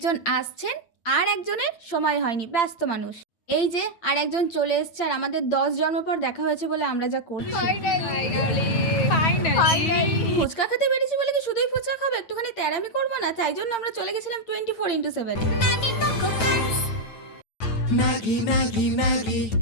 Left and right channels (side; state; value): right; late; 9.1 ms